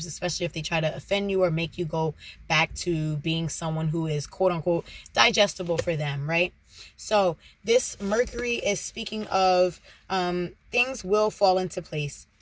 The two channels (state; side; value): identical; both; correlation 1.00